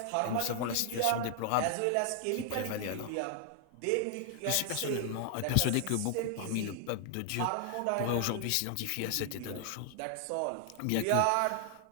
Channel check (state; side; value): different; both; correlation 0.00